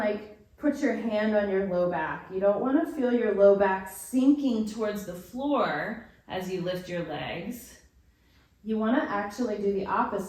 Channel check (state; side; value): identical; both; correlation 1.00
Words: put your hand on your low back. You don't want to feel your low back sinking towards the floor as you lift your legs. You want to actually do the